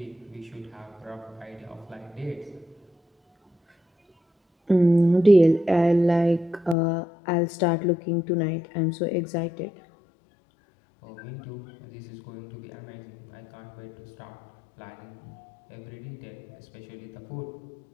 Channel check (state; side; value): drops out; right; at 6.8 s